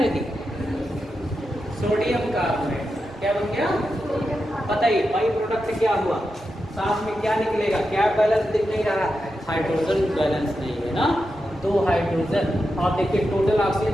Sodium carbonate. क्या बन गया? बताइए बाई प्रोडक्ट क्या हुआ? साथ में क्या निकलेगा? क्या बैलेंस दिख नहीं रहा? हाइड्रोजन बैलेंस नहीं है ना, 2 हाइड्रोजन। और देखिए टोटल ऑक्सीजन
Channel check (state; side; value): normal; both; correlation 0.88